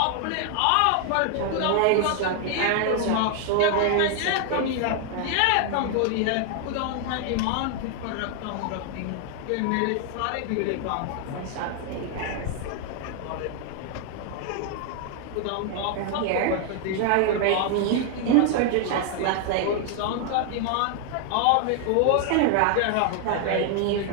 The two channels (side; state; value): both; different; correlation 0.00